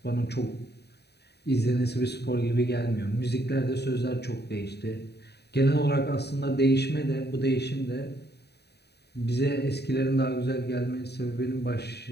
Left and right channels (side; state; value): right; late; 0.48 ms